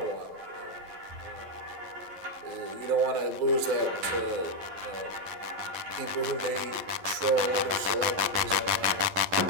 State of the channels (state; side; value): late; left; 11 ms